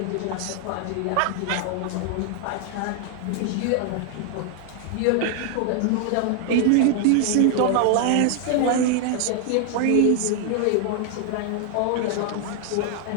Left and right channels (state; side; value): different; both; correlation 0.00